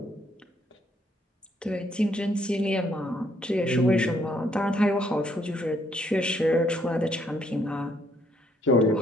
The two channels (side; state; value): both; normal; correlation 0.70